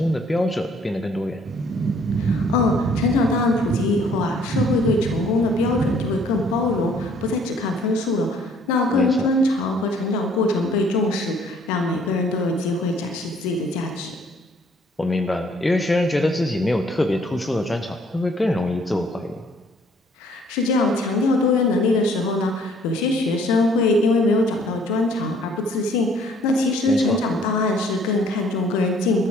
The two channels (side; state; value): both; normal; correlation 0.60